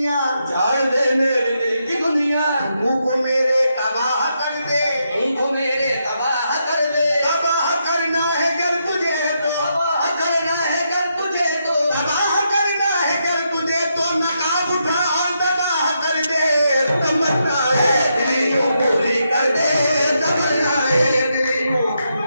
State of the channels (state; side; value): inverted; both; correlation -0.81